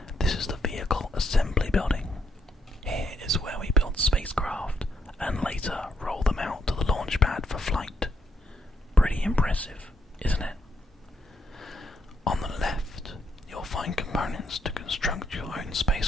impressive, isn't it? On the left, you'll find components to construct your own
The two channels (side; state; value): both; normal; correlation 0.75